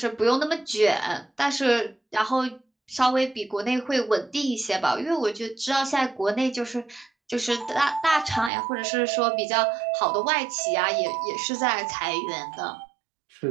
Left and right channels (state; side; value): drops out; left; at 8.5 s